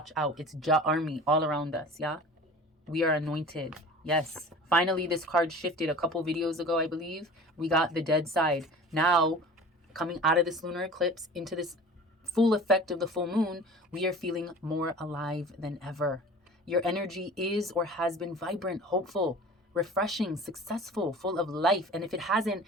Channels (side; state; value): both; normal; correlation 0.40